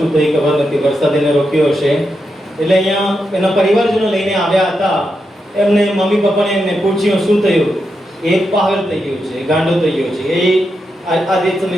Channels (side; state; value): both; normal; correlation 0.85